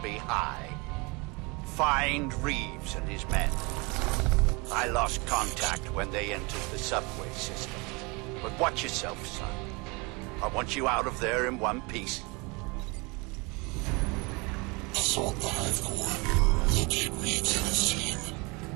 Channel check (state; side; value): quieter; left; 27.8 dB